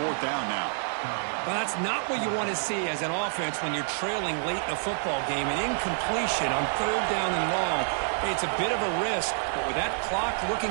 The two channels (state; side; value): silent; left; digital silence